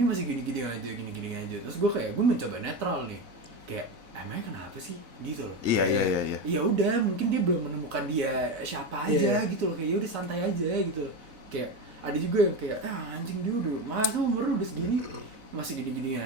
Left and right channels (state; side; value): late; left; 4.0 ms